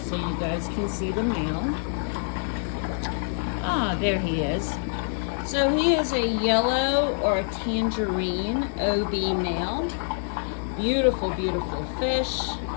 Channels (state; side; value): silent; right; digital silence